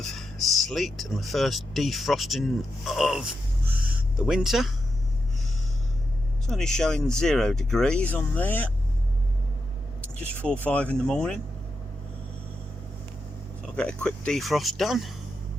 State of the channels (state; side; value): normal; both; correlation 0.86